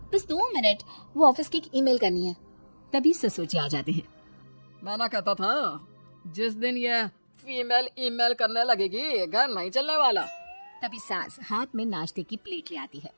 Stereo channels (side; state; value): both; inverted; correlation -1.00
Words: बस 2 मिनट, वो ऑफिस की एक ईमेल करनी है। तभी ससुर जी आ जाते हैं। मैं ना कहता था, जिस दिन ये फीमेल ईमेल करने लगेगी घर नहीं चलने वाला। तभी सास हाथ में नाश्ते की प्लेट ले आती है।